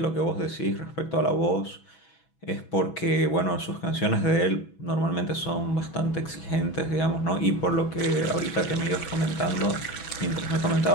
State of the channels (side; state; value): right; late; 6.1 ms